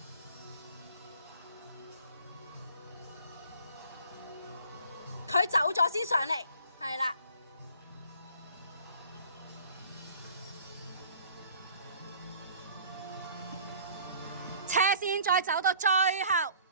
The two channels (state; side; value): inverted; both; correlation -0.52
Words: 佢走咗先上嚟，係啦。斜線再走到最後